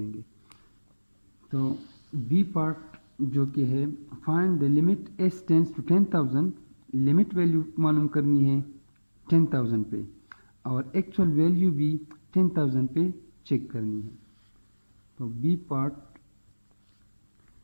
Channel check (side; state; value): both; inverted; correlation -1.00